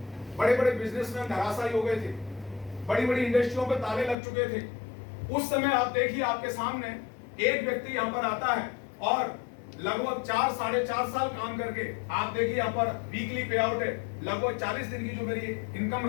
बड़े बड़े बिजनेसमैन धराशायी हो गए थे, बड़ी बड़ी इंडस्ट्रियों पे ताले लग चुके थे। उस समय आप देखिए आपके सामने एक व्यक्ति यहाँ पर आता है और लगभग 4-4.5 साल काम करके, आप देखिए यहाँ पर वीकली पे आउट है, लगभग 40 दिन की जो मेरी इनकम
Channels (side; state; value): right; drops out; at 4.2 s